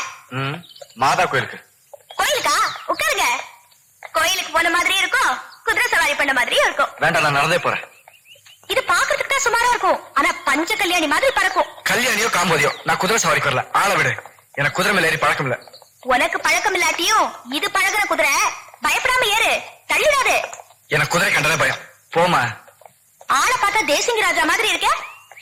மாதா கோயிலுக்கு. கோயிலுக்கா? உட்காருங்க. கோயிலுக்கு போன மாதிரி இருக்கும், குதிரை சவாரி பண்ண மாதிரியும் இருக்கும். வேண்டாம், நான் நடந்தே போறேன். இது பாக்குறதுக்கு தான் சுமாரா இருக்கும், ஆனா பஞ்ச கல்யாணி மாதிரி பறக்கும். கல்யாணியோ காம்போதியோ, நான் குதிரை சவாரிக்கு வரல. ஆள விடு, எனக்கு குதிரை மேல ஏறி பழக்கம் இல்ல. உனக்கு பழக்கம் இல்லாட்டியும் இது பழகுற குதிரை. பயப்படாம ஏறு, தள்ளிடாது. எனக்கு குதிரை கண்டதே பயம். போமா. ஆளை பார்த்தா தேசிங்க ராஜா மாதிரி இருக்க.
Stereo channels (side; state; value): both; identical; correlation 1.00